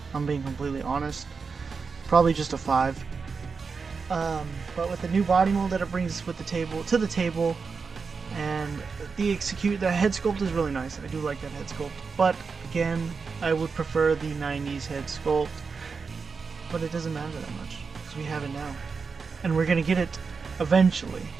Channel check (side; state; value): left; quieter; 5.1 dB